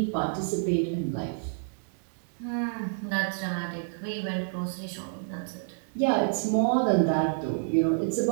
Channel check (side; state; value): left; silent; digital silence